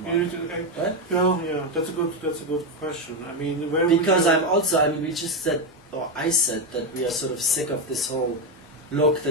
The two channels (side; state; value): both; normal; correlation 0.09